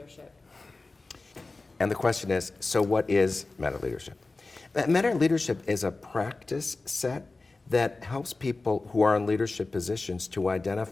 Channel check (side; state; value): right; quieter; 3.5 dB